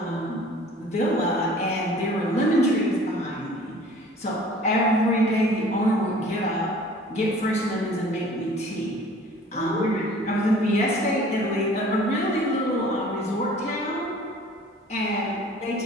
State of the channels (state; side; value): normal; both; correlation 0.49